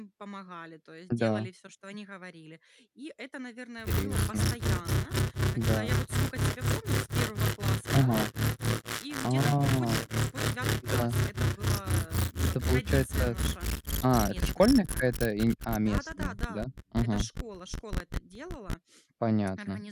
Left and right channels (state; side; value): identical; both; correlation 1.00